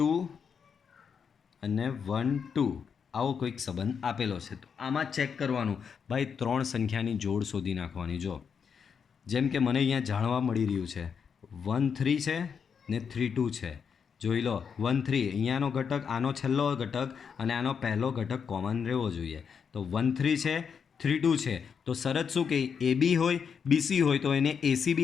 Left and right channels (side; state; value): right; quieter; 6.6 dB